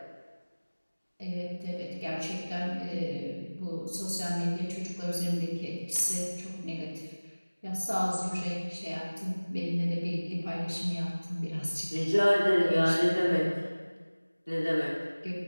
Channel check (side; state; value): both; inverted; correlation -1.00